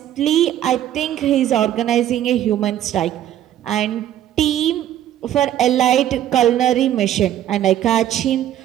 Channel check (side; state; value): left; quieter; 11.7 dB